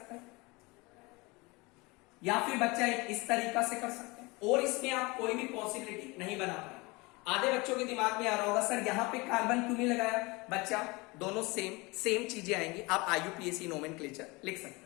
हैं, या फिर बच्चा एक इस तरीका से कर सकते हैं, और इसमें आप कोई भी पॉसिबिलिटी नहीं बना पाए। आधे बच्चों के दिमाग में आ रहा होगा सर यहां पे कार्बन क्यों नहीं लगाया? बच्चा दोनों सेम चीजें आएंगी। आप IUPAC नोमेनक्लेचर लिख सकते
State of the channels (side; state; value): right; quieter; 25.0 dB